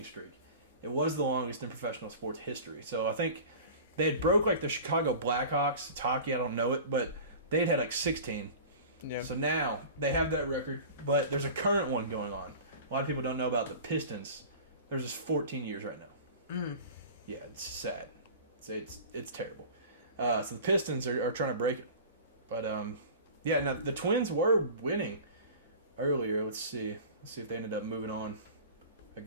streak. It was the longest in professional sports history. So I think they had broke like the Chicago Blackhawks. It's hockey, I don't know it, but they had like 16. Yeah. So now they have that record, but there's a current one going on. A lot of people don't know about the Pistons. There's just 14 years right now. Mm. Yeah, it's sad. It's terrible. So the Pistons are trying to break it. But, yeah, now the Twins were winning earlier. Let's see if they ended up moving on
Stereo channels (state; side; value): inverted; both; correlation -0.37